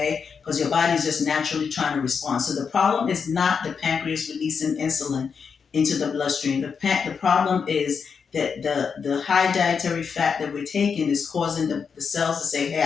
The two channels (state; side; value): quieter; right; 6.1 dB